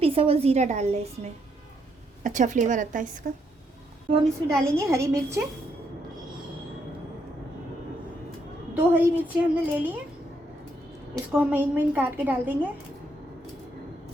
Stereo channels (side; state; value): both; normal; correlation 0.75